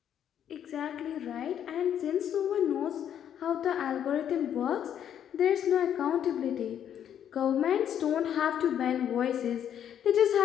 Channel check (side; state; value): right; quieter; 9.6 dB